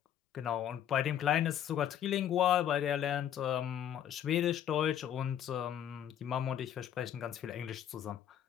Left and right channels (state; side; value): quieter; right; 10.1 dB